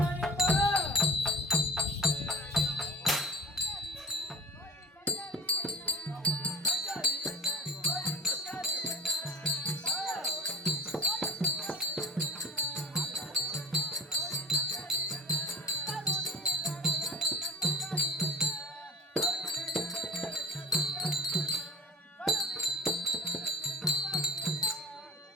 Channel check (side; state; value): both; normal; correlation 0.38